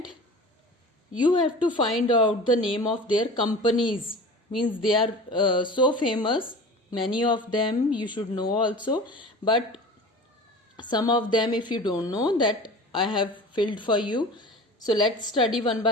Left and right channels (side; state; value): both; normal; correlation 0.37